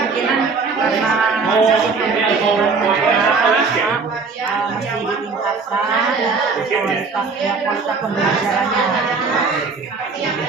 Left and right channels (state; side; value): quieter; left; 4.6 dB